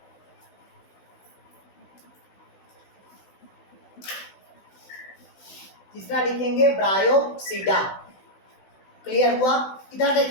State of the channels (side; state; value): right; late; 16 ms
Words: तीसरा लिखेंगे ब्रायोप्सिडा। क्लियर हुआ? इधर